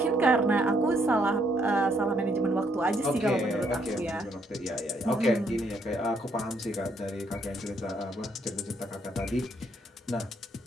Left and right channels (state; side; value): normal; both; correlation 0.71